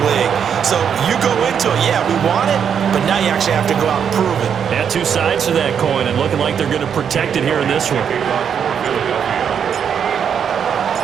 league. So you go into it, yeah, we want it, but now you actually have to go out and prove it. Yeah, two sides to that coin, and looking like they're going to protect it here in this one.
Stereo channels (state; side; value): quieter; left; 7.7 dB